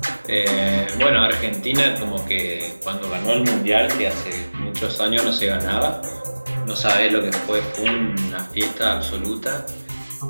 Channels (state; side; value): inverted; both; correlation -1.00